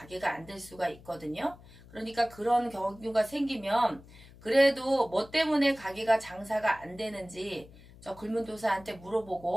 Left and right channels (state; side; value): noise; left; hum, 21 dB below the sound